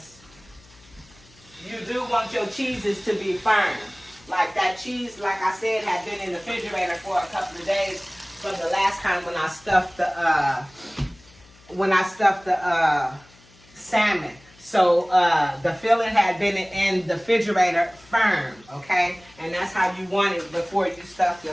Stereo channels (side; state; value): left; noise; hum, 27 dB below the sound